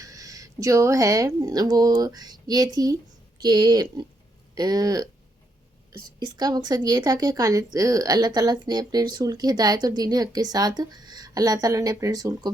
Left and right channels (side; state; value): both; normal; correlation 0.78